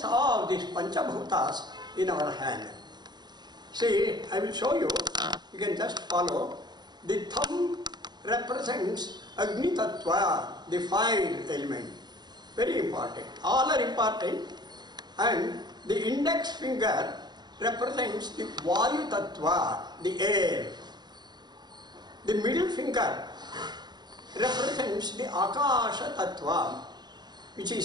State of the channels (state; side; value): late; left; 0.21 ms